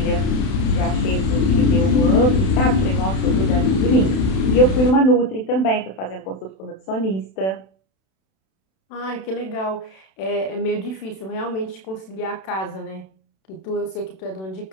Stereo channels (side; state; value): right; late; 32 ms